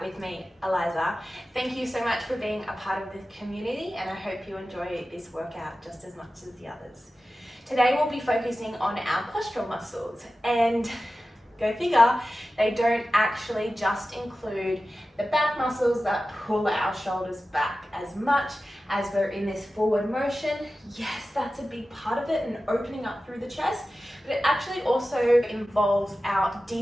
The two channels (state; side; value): normal; both; correlation 0.94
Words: with me, Eliza. Thank you so much for being a part of the community, and I hope you enjoy this workout just as much as the others. Today we'll be focusing on our postural muscles, and go figure, they don't actually just include the back muscles that pull our shoulders back as much as we're in this forward motion. Yes, that's a big part of it, and opening up through the chest, but it actually also involves our